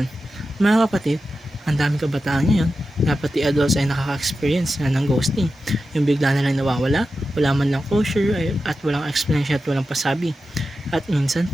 Mga kapatid, ang daming kabataan ngayon na pati adults ay nakaka-experience na ng ghosting. Yung bigla na lang nawawala, wala man lang closure at walang explanation at walang pasabi. At minsan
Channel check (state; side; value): normal; both; correlation 0.91